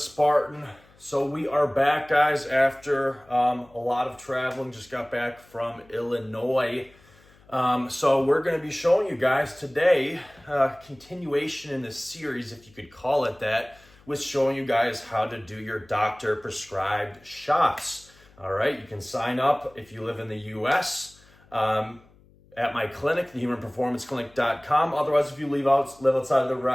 Spartan. So we are back, guys, after a lot of traveling. Just got back from Illinois. So we're going to be showing you guys today continuation in this series, if you could call it that, with showing you guys how to do your doctor prescribed shots. All right, you can sign up if you live in the U.S. At my clinic, thehumanperformanceclinic.com. Otherwise, if you live outside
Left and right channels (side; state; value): left; noise; hum, 28 dB below the sound